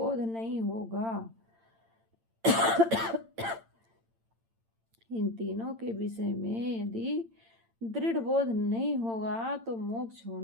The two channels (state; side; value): late; left; 8.8 ms